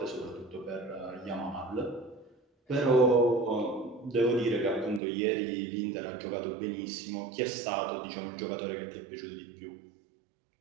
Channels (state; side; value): drops out; left; at 5.0 s